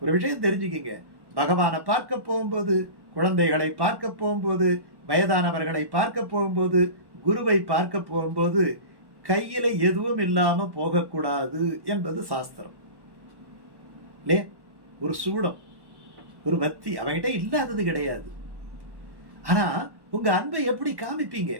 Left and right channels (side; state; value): left; late; 1.1 ms